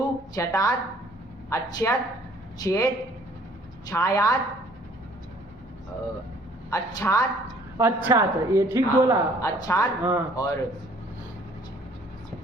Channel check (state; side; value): normal; both; correlation 0.57